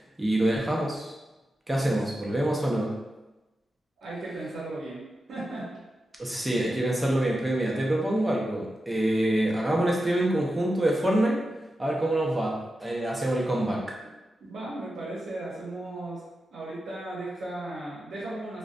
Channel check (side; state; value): both; normal; correlation 0.90